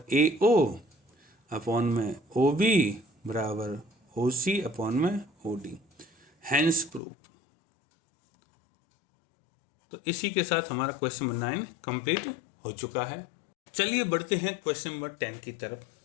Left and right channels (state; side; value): drops out; right; at 7.0 s